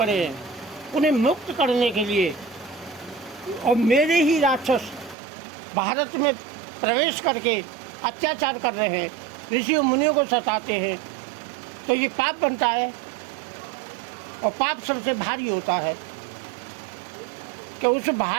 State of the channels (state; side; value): drops out; left; at 5.2 s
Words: हैं, उन्हें मुक्त करने के लिए, और मेरे ही राक्षस भारत में प्रवेश करके अत्याचार कर रहे हैं, ऋषियों मुनियों को सताते हैं, तो ये पाप बनता है। और पाप सबसे भारी होता है कि उस